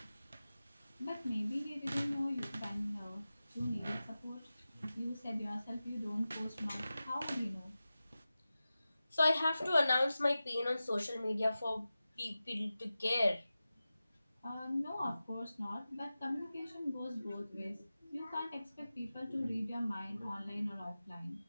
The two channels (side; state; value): both; inverted; correlation -0.95